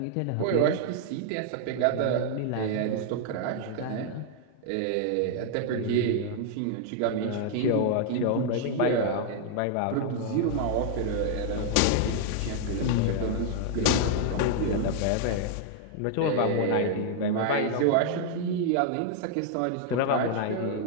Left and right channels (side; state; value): both; different; correlation 0.00